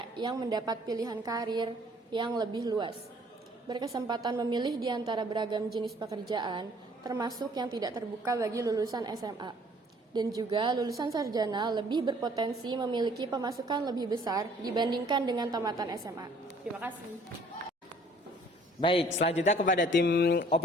yang mendapat pilihan karir yang lebih luas. Berkesempatan memilih di antara beragam jenis pekerjaan, termasuk yang tidak terbuka bagi lulusan SMA. Dan juga lulusan sarjana lebih berpotensi memiliki pemasukan lebih besar dibandingkan dengan tamatan SMA. Terima kasih. Baik, selanjutnya kepada tim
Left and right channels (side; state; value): both; normal; correlation 0.57